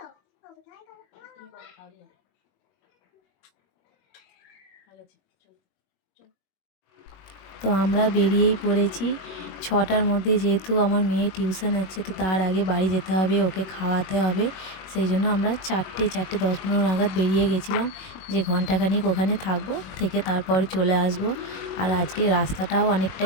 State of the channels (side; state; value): right; late; 21 ms